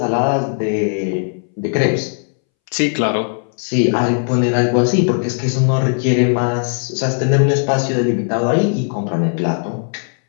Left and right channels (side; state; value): right; silent; 65 dB below the other